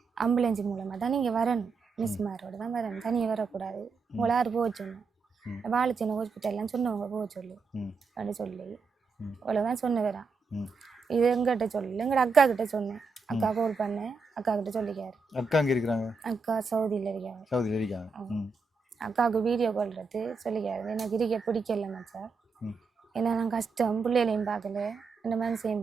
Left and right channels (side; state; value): left; quieter; 4.4 dB